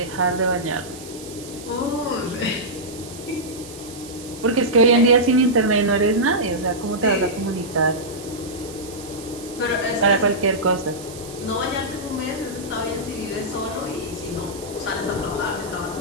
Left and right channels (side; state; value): right; noise; hiss, 16 dB below the sound